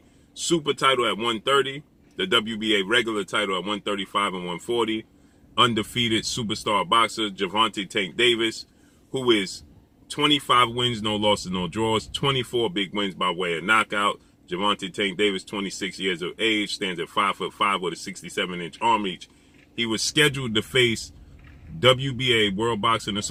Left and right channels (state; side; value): identical; both; correlation 1.00